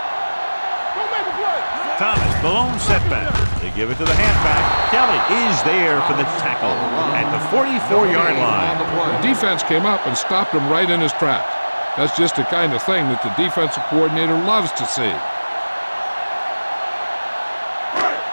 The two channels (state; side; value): inverted; both; correlation -1.00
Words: Thomas, the lone setback. They give it to the halfback. Kelly is there for the tackle at the 44-yard line. The defense came up and stopped him right in his tracks. That's just the kind of thing that the defensive coordinator loves to see.